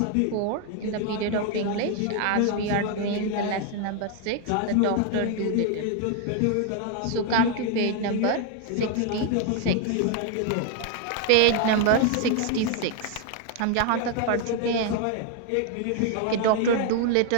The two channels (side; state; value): both; different; correlation 0.00